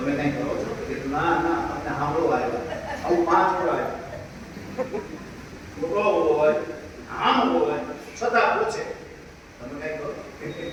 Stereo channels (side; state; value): both; identical; correlation 1.00